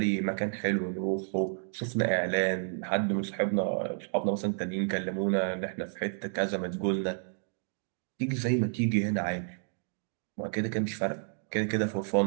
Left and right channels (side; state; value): left; silent; digital silence